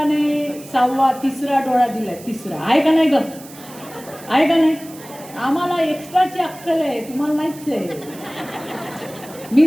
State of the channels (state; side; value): noise; right; hiss, 19 dB below the sound